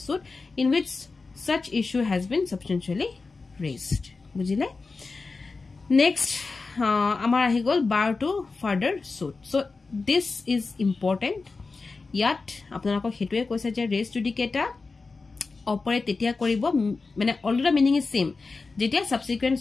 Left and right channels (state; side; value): quieter; right; 4.1 dB